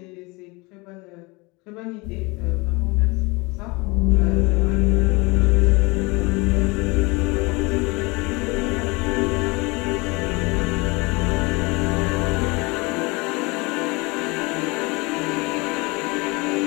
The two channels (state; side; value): quieter; right; 26.0 dB